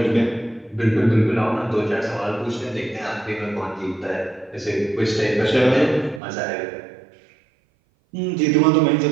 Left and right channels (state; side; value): drops out; left; at 6.2 s